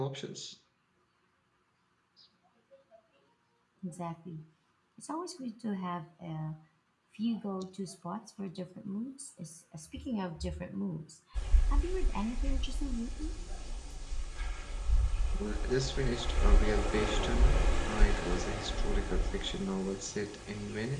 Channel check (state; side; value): identical; both; correlation 1.00